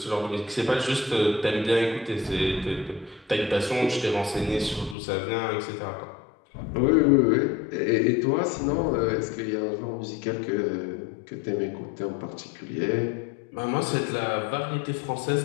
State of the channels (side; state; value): right; drops out; at 5.0 s